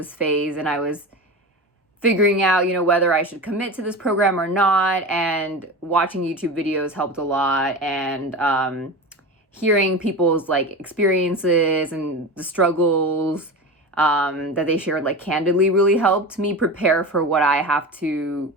phase and I was figuring out, whether I should commit to this program or not, and watching YouTube videos helped a lot. And hearing people's like experiences and the struggles that they shared like candidly really helped me prepare for what I have to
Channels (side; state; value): both; normal; correlation 0.27